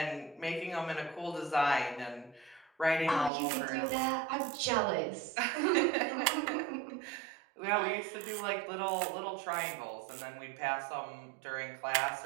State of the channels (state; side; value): drops out; left; at 3.3 s